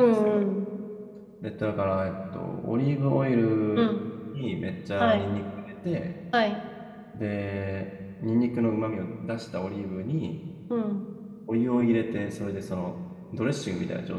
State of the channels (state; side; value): identical; both; correlation 1.00